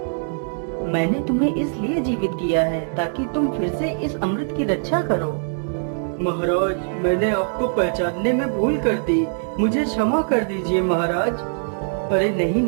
मैंने तुम्हें इसलिए जीवित किया है ताकि तुम फिर से इस अमृत की रक्षा करो। महाराज, मैंने आपको पहचानने में भूल कर दी, मुझे क्षमा कर दीजिए महाराज। अरे नहीं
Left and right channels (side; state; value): left; silent; digital silence